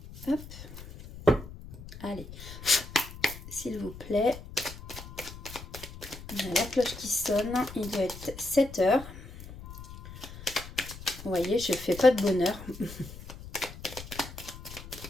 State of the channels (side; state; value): left; noise; rumble, 14 dB below the sound